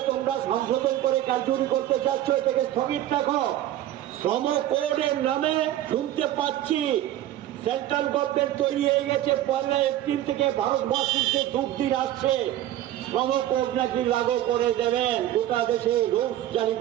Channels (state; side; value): quieter; left; 13.1 dB